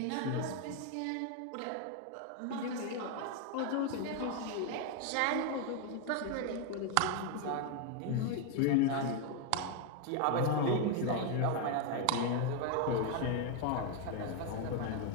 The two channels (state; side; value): different; both; correlation 0.01